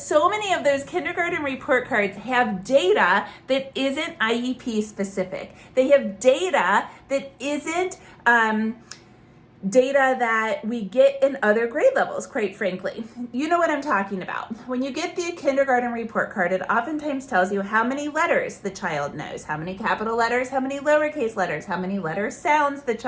so many of those kindergarten report cards have data that isn't IEP specific. They have data that isn't data that we get in other grade levels, quite frankly. You know what I'm talking about. When you get the kindergarten report card, it oftentimes tells you how many letters the child knows, how many capital letters, how many lowercase letters, how many letter sounds the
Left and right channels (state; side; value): identical; both; correlation 1.00